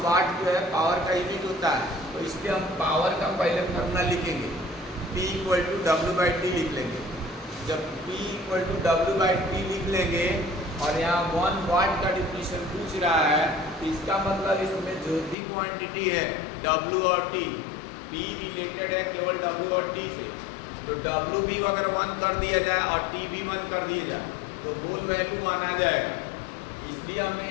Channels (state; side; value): drops out; right; at 15.4 s